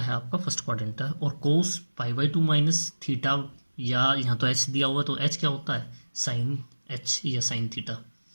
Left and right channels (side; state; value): both; inverted; correlation -1.00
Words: है? आपका फर्स्ट क्वाड्रेंट है। और कोस पाई/2 माइनस थीटा, या यहाँ तो एच दिया हुआ है तो एच क्या होता है? साइन एच या साइन थीटा।